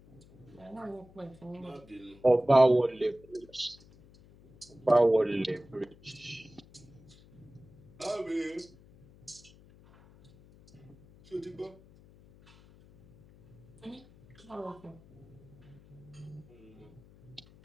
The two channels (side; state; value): left; noise; hum, 24 dB below the sound